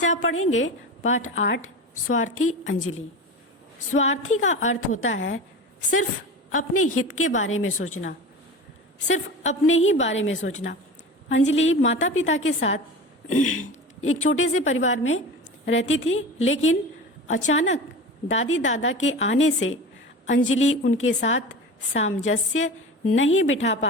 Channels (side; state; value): both; normal; correlation 0.31